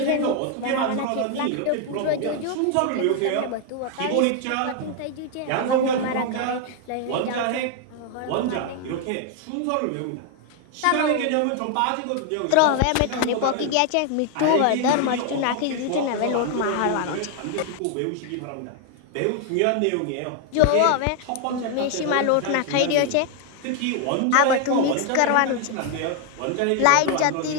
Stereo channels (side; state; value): both; different; correlation 0.00